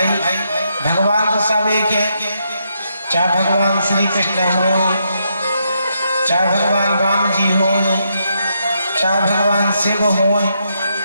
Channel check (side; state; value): both; inverted; correlation -0.79